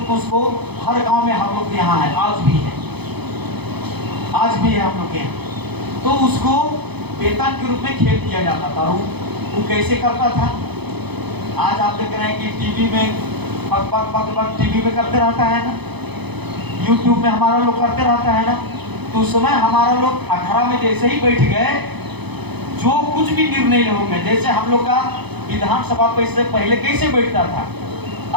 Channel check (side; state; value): left; late; 0.98 ms